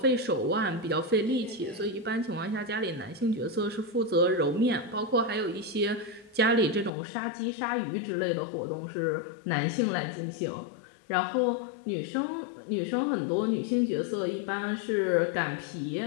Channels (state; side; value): drops out; right; at 6.9 s